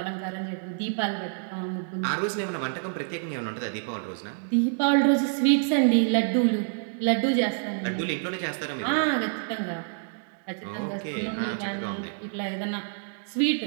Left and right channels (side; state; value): left; silent; digital silence